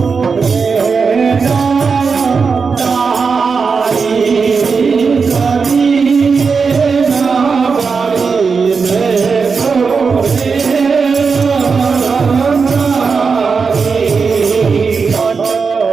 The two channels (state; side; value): quieter; left; 5.2 dB